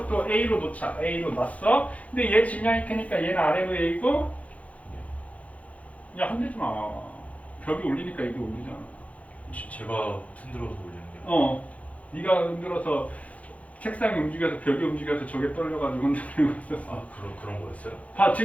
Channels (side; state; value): right; late; 0.067 ms